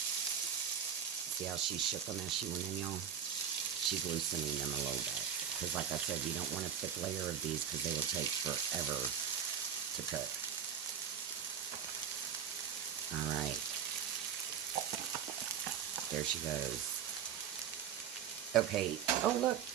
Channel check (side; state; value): left; quieter; 8.7 dB